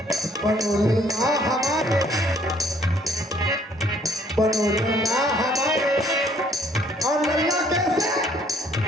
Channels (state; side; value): normal; both; correlation 0.61